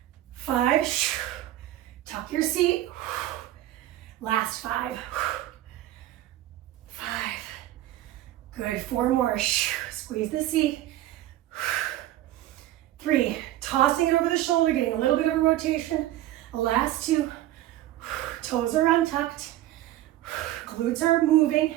5, tuck your seat. Last 5. 5, good. 4 more. Squeeze the seat. 3, tossing it over the shoulder, getting a little bit of a rotation. Last 2, toes are untucked. Glutes are moving.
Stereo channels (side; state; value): left; quieter; 14.5 dB